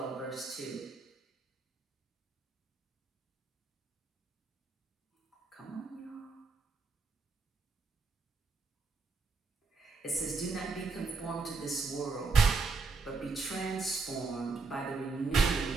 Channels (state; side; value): quieter; left; 4.4 dB